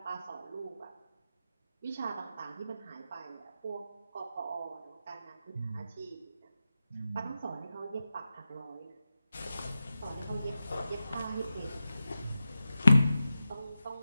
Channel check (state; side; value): inverted; both; correlation -0.91